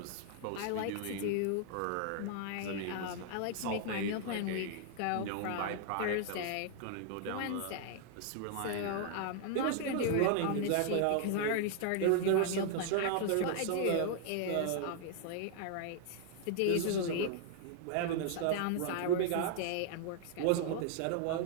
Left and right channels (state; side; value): different; both; correlation 0.00